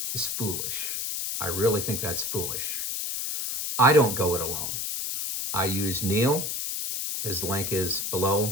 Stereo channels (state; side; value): noise; left; hiss, 2 dB below the sound